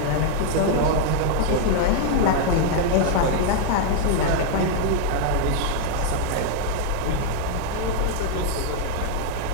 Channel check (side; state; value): both; different; correlation -0.01